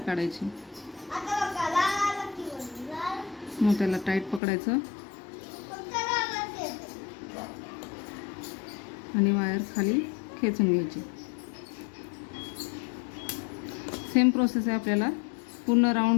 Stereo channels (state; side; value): drops out; right; at 4.4 s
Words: मोत्याला टाईट पकडायचं आणि वायर खाली खेचून घ्यायची. सेम प्रोसेस आहे, आपल्याला पूर्ण